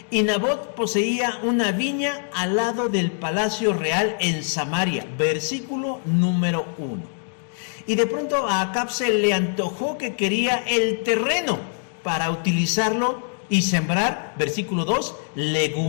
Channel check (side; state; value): right; silent; 59 dB below the other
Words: Y Nabot poseía una viña al lado del palacio real en Samaria. Versículo número 1. Y de pronto a Acab se le antojó que quería el terreno para utilizarlo y sembrar, versículo 2,